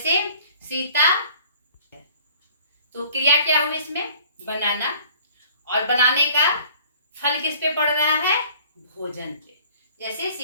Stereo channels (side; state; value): both; inverted; correlation -0.52